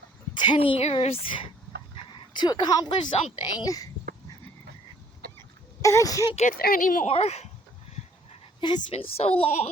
10 years to accomplish something, I can't get there anymore. And it's been so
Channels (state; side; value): normal; both; correlation 0.60